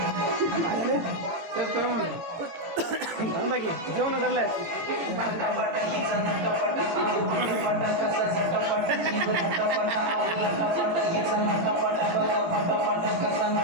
बाकी जेवण करलाय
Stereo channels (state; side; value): late; left; 18 ms